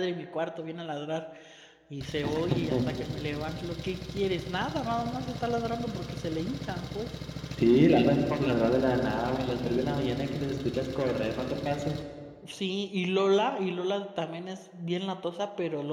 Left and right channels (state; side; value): identical; both; correlation 1.00